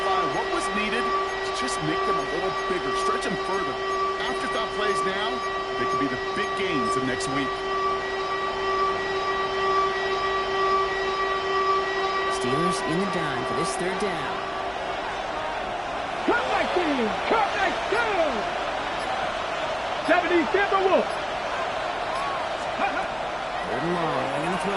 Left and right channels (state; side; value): identical; both; correlation 1.00